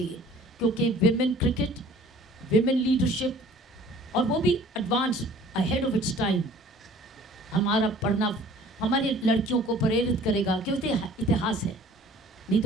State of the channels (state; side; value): normal; both; correlation 0.50